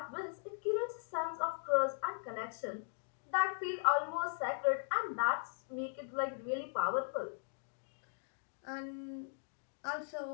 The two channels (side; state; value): right; silent; digital silence